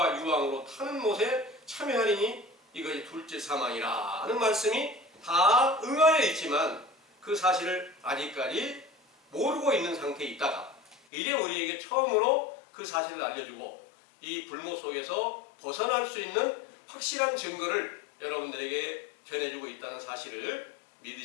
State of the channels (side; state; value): right; drops out; at 11.0 s